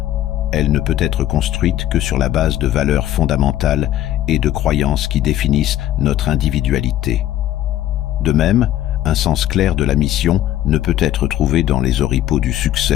Elle ne peut être construite que sur la base de valeurs fondamentales et de croyances qui définissent notre individualité. De même, un sens clair de la mission ne peut être trouvé dans les oripeaux du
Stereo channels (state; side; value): quieter; right; 12.9 dB